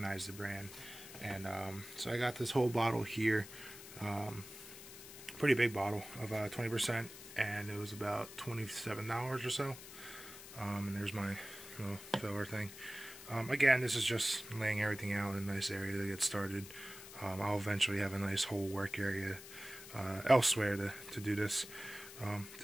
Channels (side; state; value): left; noise; hiss, 14 dB below the sound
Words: the brand, and so I got this whole bottle here, pretty big bottle of 20%, and it was about $27 or so. And there's my little filler thing. Again, this is just laying everything out in a nice area to get started. I'll eventually have a nice whole work area elsewhere to do this.